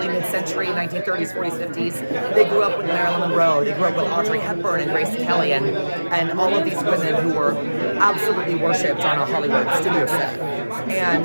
mid-century, 1930s, 40s, 50s. They grew up with Marilyn Monroe. They grew up with Audrey Hepburn and Grace Kelly and all of these women who were absolutely worshipped on a Hollywood studio set.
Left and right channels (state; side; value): inverted; both; correlation -1.00